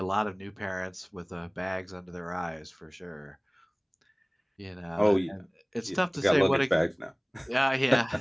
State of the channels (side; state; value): both; identical; correlation 1.00